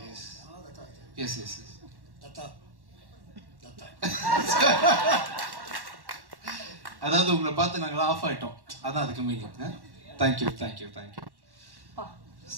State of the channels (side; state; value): left; late; 1.1 ms